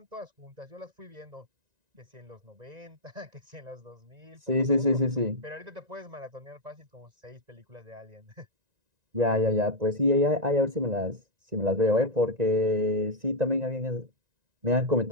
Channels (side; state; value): left; late; 1.9 ms